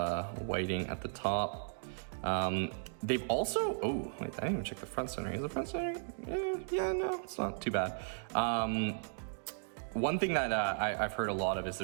whiting at the top. They've also, oh, wait, I didn't even check the front centering. Is the front centering? Yeah, no, it's not too bad. One thing that I've heard a lot of is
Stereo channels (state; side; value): silent; left; digital silence